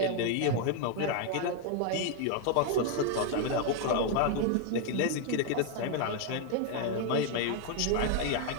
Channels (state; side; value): different; both; correlation 0.00